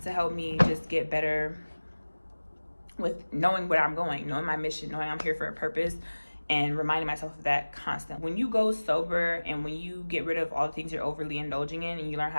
help me just get better with knowing where I'm going, knowing my mission, knowing I'm here for a purpose, and reminding myself of that constant. When you go sober and when you get rid of all the things you're overly indulging in and you learn how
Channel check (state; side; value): inverted; both; correlation -1.00